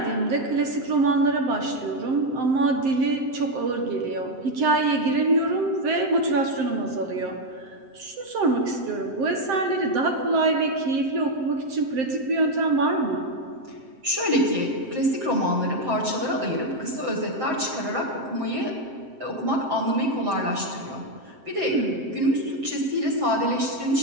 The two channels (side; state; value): left; late; 7.6 ms